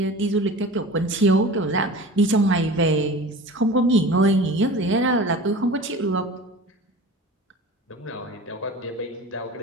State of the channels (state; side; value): normal; both; correlation 0.37